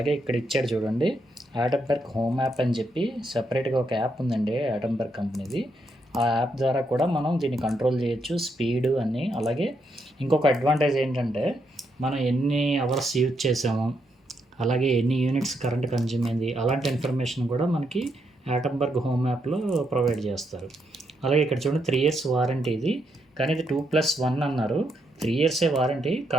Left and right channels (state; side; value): normal; both; correlation 0.79